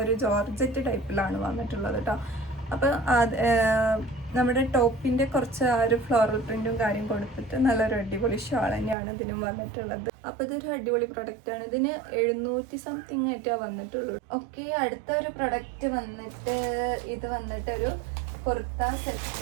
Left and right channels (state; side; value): drops out; left; at 9.0 s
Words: ഒരു ജോർജറ്റ് ടൈപ്പിലാണ് വന്നിട്ടുള്ളത് കേട്ടോ. അപ്പം നമ്മുടെ ടോപ്പിൻ്റെ കുറച്ച് ആ ഒരു ഫ്ലോറൽ പ്രിൻറ്റും കാര്യം കൊടുത്തിട്ട് നല്ലൊരു അടിപൊളി ഷാൾ തന്നെയാണ് ഇതിനും വന്നിട്ടുള്ളത്. അപ്പോൾ ഇതൊരു അടിപൊളി പ്രൊഡക്റ്റാണ്. ഇതിന് 700 സംതിങ് ആയിട്ടാണ് വന്നിട്ടുള്ളൂ. ഓക്കെ, അടുത്ത ഒരു പ്രൊഡക്റ്റ് വന്നിട്ട് ഇത് വന്നിട്ട് ഒരു കുർത്ത